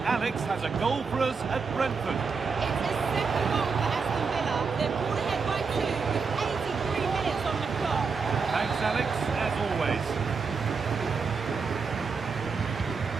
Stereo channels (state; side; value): quieter; left; 5.2 dB